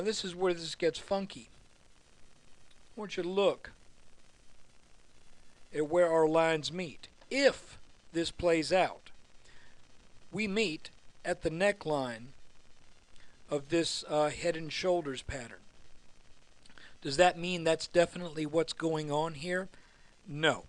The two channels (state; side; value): identical; both; correlation 1.00